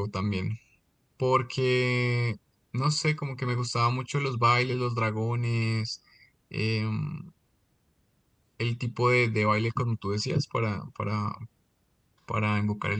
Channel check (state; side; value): identical; both; correlation 1.00